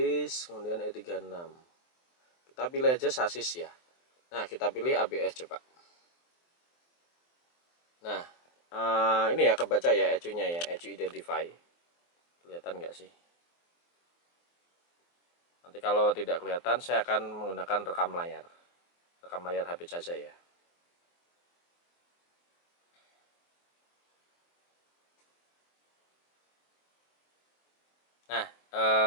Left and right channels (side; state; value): right; late; 23 ms